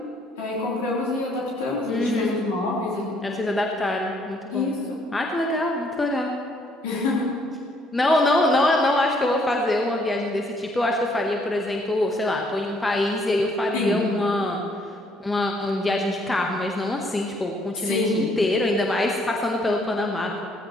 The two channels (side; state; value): both; normal; correlation 0.66